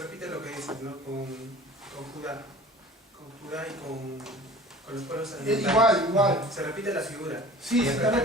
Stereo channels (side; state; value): both; normal; correlation 0.44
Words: lo que dices, ¿no? Con Judá. Con Judá y con los pueblos alimentarios. Igual. Se repite la figura. Sí, se está